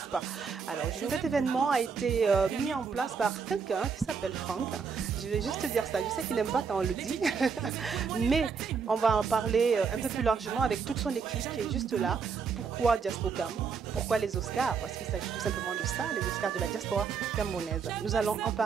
pas? Alors cet événement a été mis en place par quelqu'un qui s'appelle Franck. Je vais juste te dire ça, je sais qu'il n'aime pas quand on le dit, mais on va en parler un peu plus largement avec toute son équipe qui est juste là. Pourquoi Diaspocam? Pourquoi les Oscars? Parce qu'il s'agit tout simplement de ça, les Oscars de la diaspora camerounaise. Nous allons en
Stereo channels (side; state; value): left; quieter; 5.8 dB